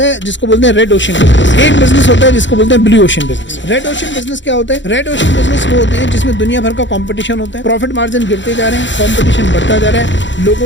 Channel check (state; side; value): late; right; 0.54 ms